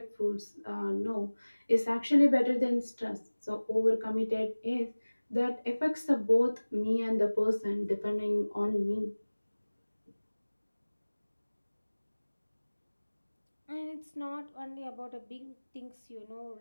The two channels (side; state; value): both; inverted; correlation -1.00